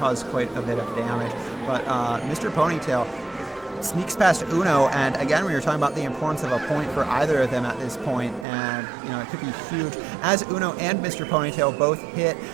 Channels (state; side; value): drops out; left; at 8.5 s